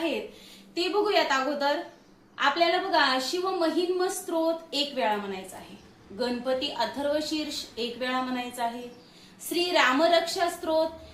ते बघूयात. अगोदर आपल्याला बघा शिव महिन्म स्तोत्र 1 वेळा म्हणायचा आहे, गणपती अथर्वशीर्ष 1 वेळा म्हणायचा आहे, श्री रामरक्षा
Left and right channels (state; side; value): identical; both; correlation 1.00